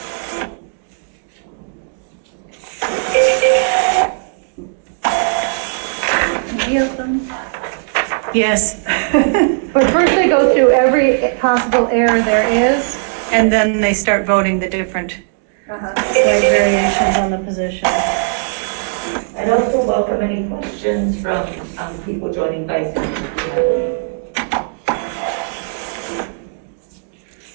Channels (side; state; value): left; silent; digital silence